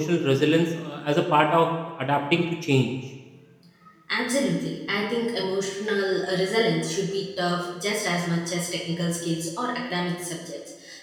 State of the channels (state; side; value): identical; both; correlation 1.00